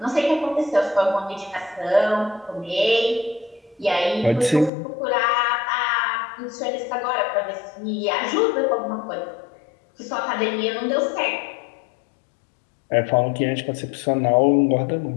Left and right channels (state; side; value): drops out; right; at 4.7 s